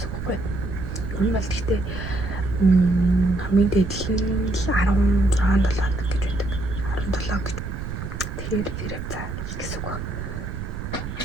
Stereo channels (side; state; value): right; noise; rumble, 7 dB below the sound